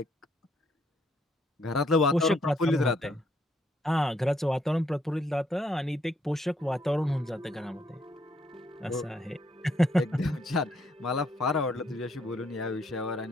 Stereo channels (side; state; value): both; normal; correlation 0.71